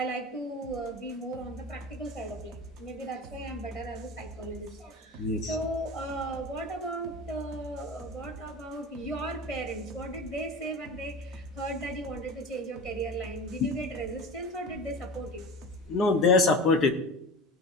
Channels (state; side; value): normal; both; correlation 0.33